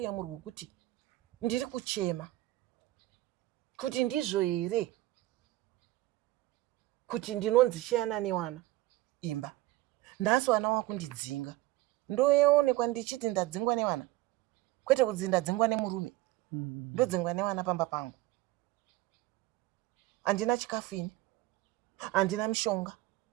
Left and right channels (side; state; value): left; quieter; 17.0 dB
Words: rwekuti ndiri kuchema kuti ndizvo here kuti ndinonzi shayana newana imba. Nhasi wana wakundidzinga. Ndoonekwa ndichiti ndadzingwa newana. Kwete kuti ndadzingwa nemurume. Ndodzingwa newana pamba pangu. Handina chikafu ini. Handina mishonga.